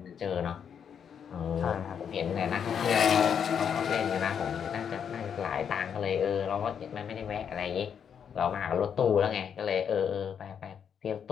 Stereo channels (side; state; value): right; quieter; 7.7 dB